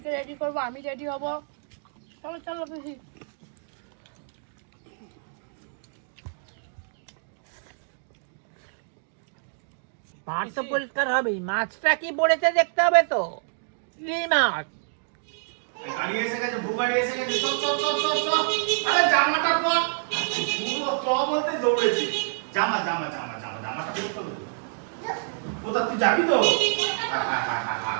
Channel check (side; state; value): left; silent; digital silence